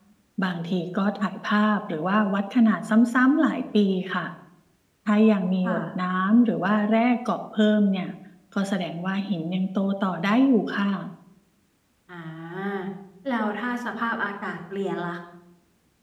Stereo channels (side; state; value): both; identical; correlation 1.00